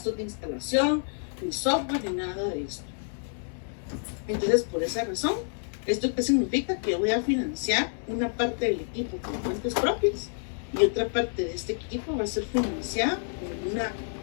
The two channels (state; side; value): silent; right; digital silence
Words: de instalación, ni software, ni nada de esto. Entonces, por esa razón, ¿esto qué significa? Que voy a financiar una parte del equipo con fuentes propias y otra parte de este equipo va a ser financiada